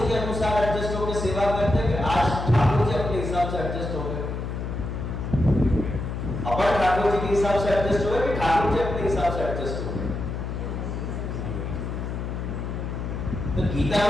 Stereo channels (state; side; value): noise; left; hum, 4 dB below the sound